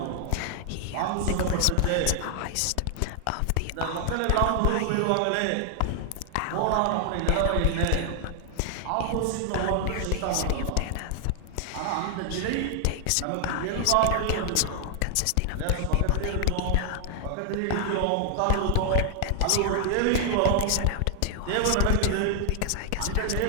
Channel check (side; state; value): both; different; correlation 0.00